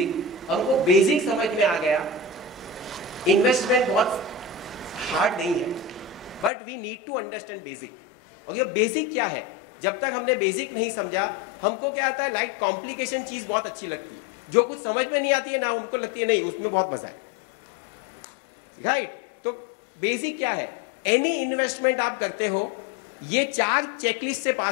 हमको बेसिक समझ में आ गया। इन्वेस्टमेंट बहुत हार्ड नहीं है, but we need to understand basic. Okay, basic क्या है? जब तक हमने बेसिक नहीं समझा, हमको क्या आता है? राइट, कॉम्प्लिकेशन चीज बहुत अच्छी लगती है। जो कुछ समझ में नहीं आती है ना, उनको लगती है नहीं उसमें बहुत मजा है, राइट? तो बेसिक क्या है? एनी इन्वेस्टमेंट आप करते हो, ये 4 चेकलिस्ट से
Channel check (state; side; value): drops out; right; at 6.5 s